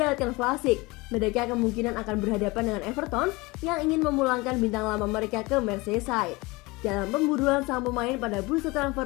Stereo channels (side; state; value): right; quieter; 23.5 dB